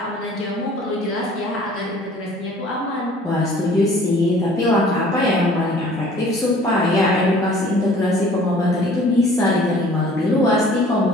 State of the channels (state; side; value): normal; both; correlation 0.51